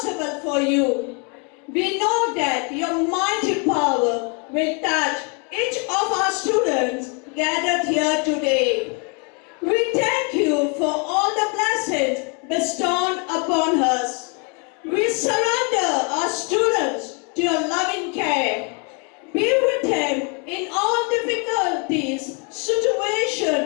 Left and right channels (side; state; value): right; quieter; 35.5 dB